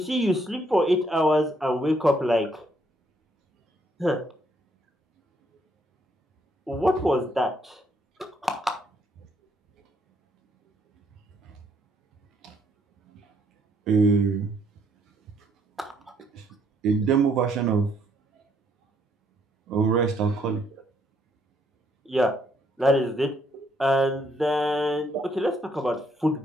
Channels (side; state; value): both; normal; correlation 0.70